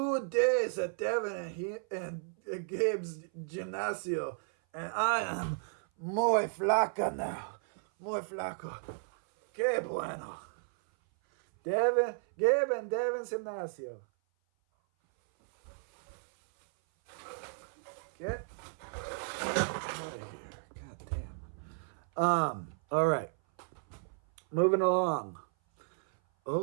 days at Devon and Gabe's Gimnasio, and I am muy flaca now. muy flaco. Qué bueno. Devin Gimnasio. Get out of here. God damn. All right. Moving along.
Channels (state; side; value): silent; left; 55 dB below the other